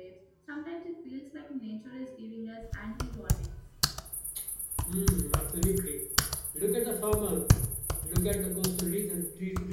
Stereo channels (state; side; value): identical; both; correlation 1.00